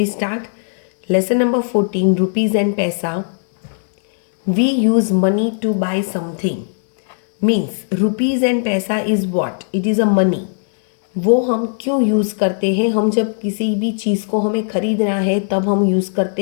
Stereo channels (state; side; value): silent; right; digital silence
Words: start. Lesson number 14, Rupees and Paisa. We use money to buy something. Means rupees and paisa is what? It is a money. वो हम क्यों use करते हैं? हम जब किसी भी चीज़ को हमें ख़रीदना है तब हम यूज़